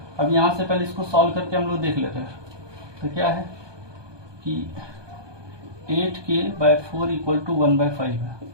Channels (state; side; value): late; left; 1.2 ms